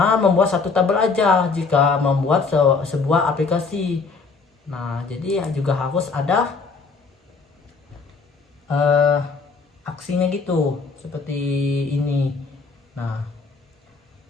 membuat satu tabel aja jika membuat sebuah aplikasi. Nah, jadi juga harus ada aksinya gitu, seperti ini. Nah,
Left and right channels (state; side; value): quieter; right; 4.6 dB